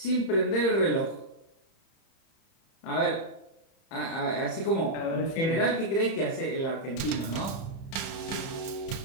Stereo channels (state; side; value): late; right; 30 ms